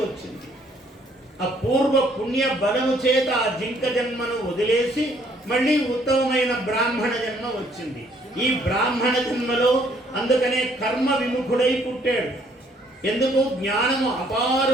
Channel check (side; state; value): both; normal; correlation 0.65